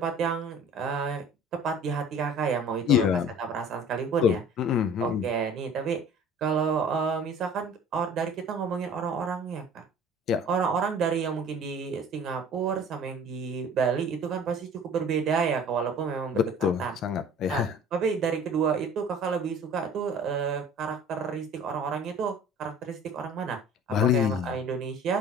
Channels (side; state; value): both; normal; correlation 0.46